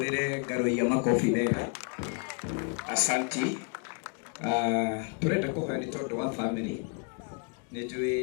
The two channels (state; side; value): quieter; right; 37.9 dB